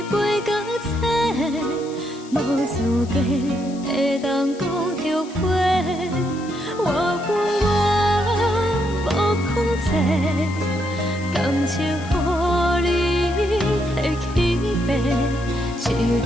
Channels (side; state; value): left; noise; hiss, 21 dB below the sound